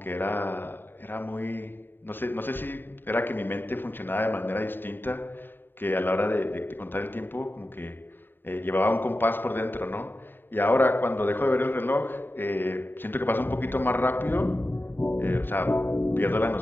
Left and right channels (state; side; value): late; right; 0.095 ms